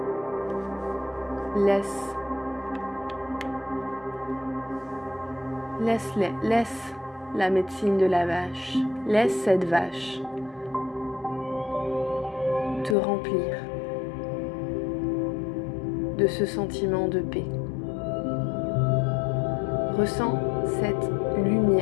Laisse la médecine de la vache, laisse cette vache te remplir de ce sentiment de paix. Ressens cette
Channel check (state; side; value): drops out; right; at 13.0 s